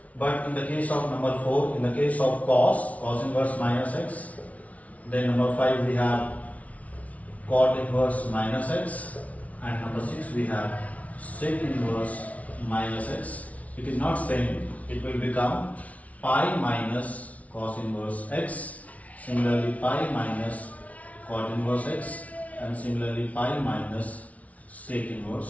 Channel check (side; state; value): right; late; 0.068 ms